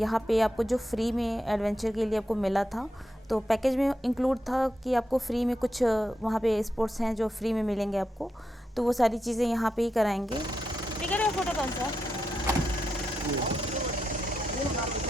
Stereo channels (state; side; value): normal; both; correlation 0.85